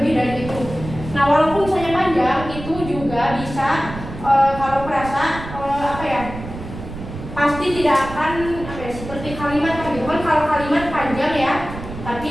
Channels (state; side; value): noise; right; rumble, 11 dB below the sound